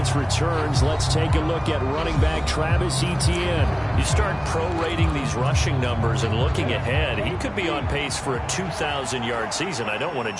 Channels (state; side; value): identical; both; correlation 1.00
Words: returns, let's take a look at running back Travis Etienne. You start prorating these rushing numbers and looking ahead, he could be on pace for a 2,000-yard season. I don't want to